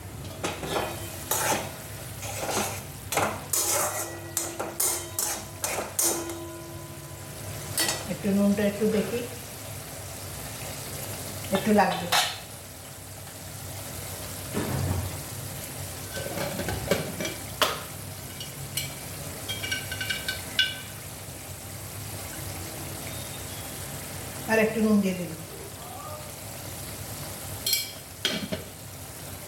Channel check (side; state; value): both; identical; correlation 1.00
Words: একটু নুনটা একটু দেখি, একটু লাগবে। আর একটু নুন দিয়ে দিন।